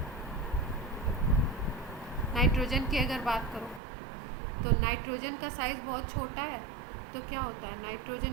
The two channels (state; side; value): drops out; left; at 3.8 s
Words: नाइट्रोजन की अगर बात करो तो नाइट्रोजन का साइज बहुत छोटा है, तो क्या होता है,